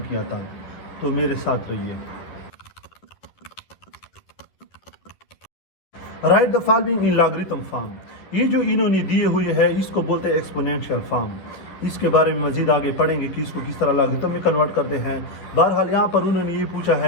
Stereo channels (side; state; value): right; late; 11 ms